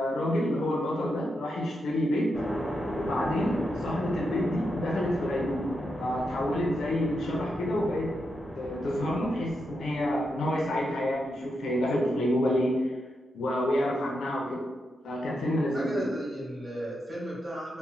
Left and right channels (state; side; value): normal; both; correlation 0.85